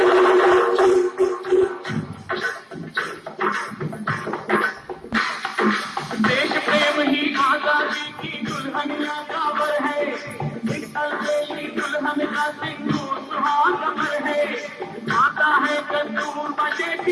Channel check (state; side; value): identical; both; correlation 1.00